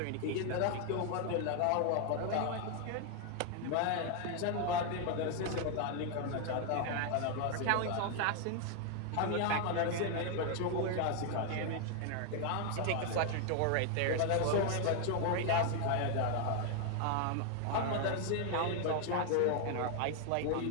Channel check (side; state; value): both; different; correlation 0.00